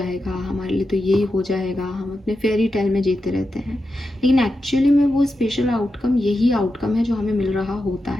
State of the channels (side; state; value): both; normal; correlation 0.89